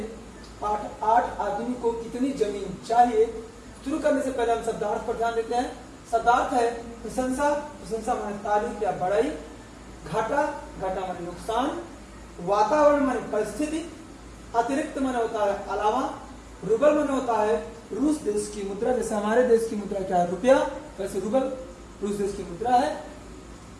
पाठ 8 आदमी को कितनी जमीन चाहिए शुरू करने से पहले हम शब्दार्थ पर ध्यान देते हैं। शब्दार्थ है प्रशंसा, प्रशंसा माने तारीफ या बड़ाई, घाटा, घाटा माने नुकसान, वातावरण माने परिस्थिति, अतिरिक्त माने होता है अलावा, रूबल माने होता है रूस देश की मुद्रा। जैसे हमारे देश की मुद्रा क्या है? रुपया, वैसे रूबल रूस देश की मुद्रा है।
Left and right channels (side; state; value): both; identical; correlation 1.00